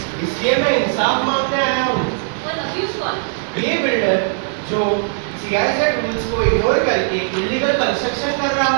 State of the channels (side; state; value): left; silent; 67 dB below the other